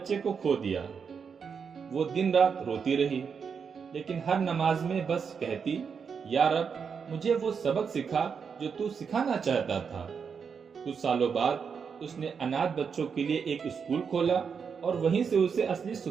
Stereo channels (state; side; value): quieter; left; 6.3 dB